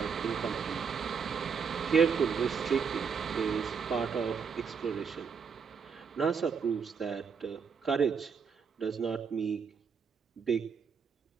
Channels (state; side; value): quieter; left; 6.2 dB